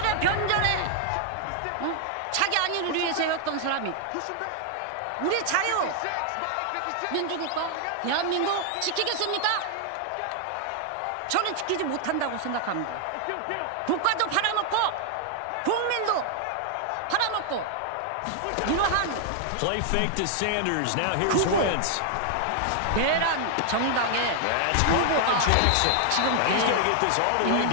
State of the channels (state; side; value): different; both; correlation 0.00